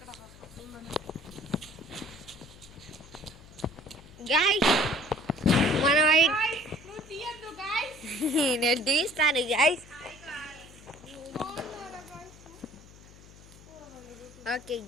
గైస్ మనం నేను తీస్తాను గైస్. ఓకే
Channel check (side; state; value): left; noise; hum, 21 dB below the sound